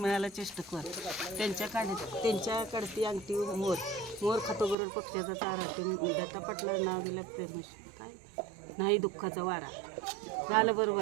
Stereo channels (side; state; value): left; drops out; at 4.8 s